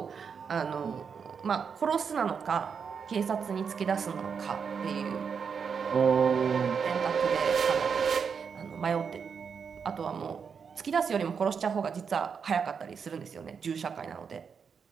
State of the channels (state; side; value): quieter; left; 6.3 dB